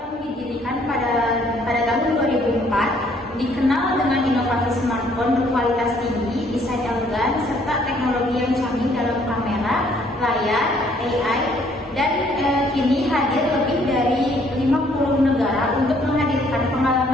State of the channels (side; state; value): both; normal; correlation 0.63